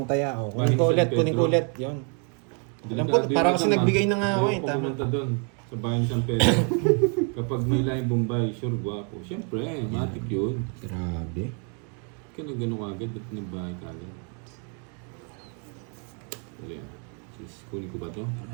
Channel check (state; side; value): quieter; left; 39.4 dB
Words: taya. O, kunin ko Bahay ni ulit, San kunin ko Pedro. ulit. Yun. Alam ko, Delikado parang yun kasi naman. nagbigay na nga ako eh. Ayoko Tama. pumunta doon sa bahay ni San Pedro. Kapag may laing Bombay, sure guwapo. Siyempre, matik yun. Grabe. Kaya na gano'n agad, ba't may bahay ka agad? Wala yan. Sis, kunin ko ba to?